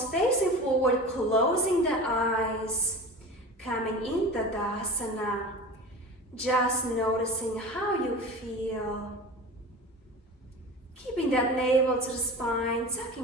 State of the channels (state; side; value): normal; both; correlation 0.33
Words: facing forward, closing the eyes. Coming into Tadasana. Just noticing how you feel. Keeping that navel to the spine,